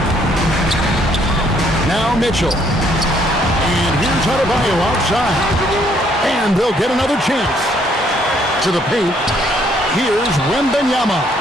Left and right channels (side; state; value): both; normal; correlation 0.67